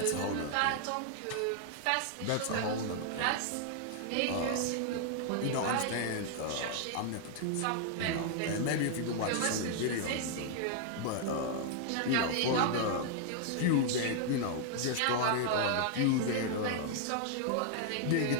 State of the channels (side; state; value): both; different; correlation 0.00